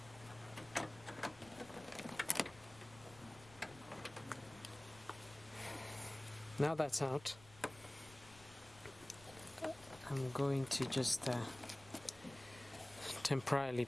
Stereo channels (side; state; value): left; noise; rumble, 21 dB below the sound